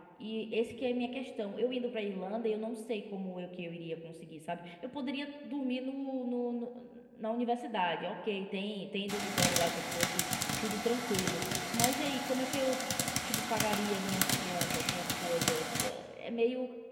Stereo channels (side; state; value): both; identical; correlation 1.00